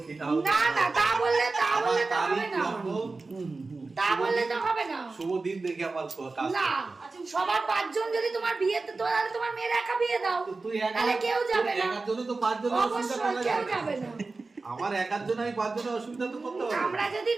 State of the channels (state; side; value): quieter; left; 3.7 dB